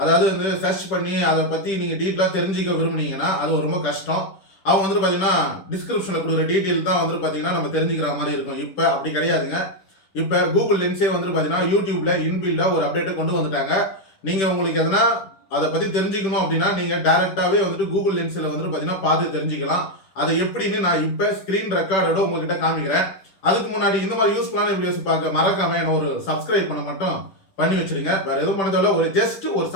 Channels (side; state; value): right; late; 10 ms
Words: அதாவது வந்து சர்ச் பண்ணி அதை பற்றி நீங்கள் டீட்டெயிலாக தெரிஞ்சுக்க விரும்புனீங்கன்னா அது ரொம்ப கஷ்டம். அவங்க வந்துட்டு பார்த்தீங்கன்னா டிஸ்கிரிப்ஷனில் கொடுக்குற டீட்டெயில் தான் வந்துட்டு பார்த்தீங்கன்னா நம்ம தெரிஞ்சுக்கிற மாதிரி இருக்கும். இப்போ அப்படி கிடையாதுங்க. இப்போ கூகுள் லென்ஸே வந்துட்டு பார்த்தீங்கன்னா யூடியூப்ல இன்பில்டாக ஒரு அப்டேட்டை கொண்டு வந்துட்டாங்க. நீங்கள் உங்களுக்கு எதனா அதை பற்றி தெரிஞ்சுக்கணும் அப்படின்னா நீங்கள் டைரெக்டாகவே வந்துட்டு கூகுள் லென்ஸில் வந்துட்டு பார்த்தீங்கன்னா பார்த்து தெரிஞ்சுக்கலாம். அதை எப்படின்னு நான் இப்போ ஸ்க்ரீன் ரெக்கார்டோட உங்ககிட்ட காமிக்கிறேன். அதுக்கு முன்னாடி இந்த மாதிரி யூஸ்ஃபுல்லான வீடியோஸ் பார்க்க மறக்காம என்ன ஒரு சப்ஸ்கிரைப் பண்ண மட்டும் பண்ணி வச்சிருங்க. வேற எதுவும் பண்ணதோட ஒரு ஜஸ்ட் ஒரு